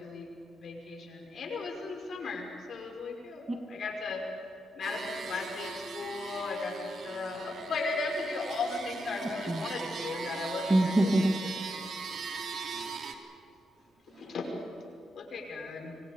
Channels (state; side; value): normal; both; correlation 0.83